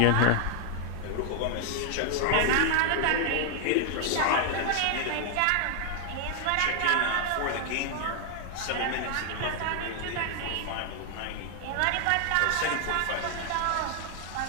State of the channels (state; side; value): different; both; correlation 0.00